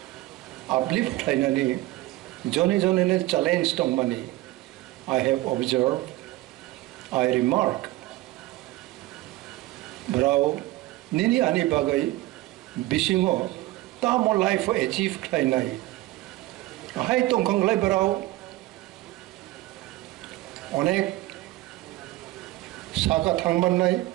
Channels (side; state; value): left; quieter; 18.1 dB